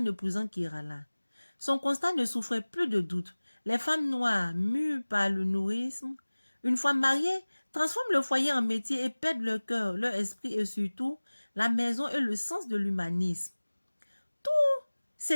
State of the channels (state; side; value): inverted; both; correlation -1.00